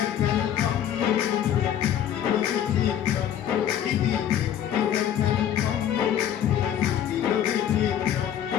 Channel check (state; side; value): quieter; right; 10.2 dB